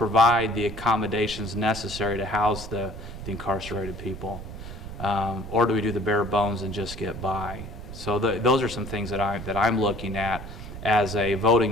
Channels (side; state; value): right; noise; rumble, 11 dB below the sound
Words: the accommodations necessary to house the incarcerated people? Or do we do the bare bones and just get by? So those are some things that I'm looking at as a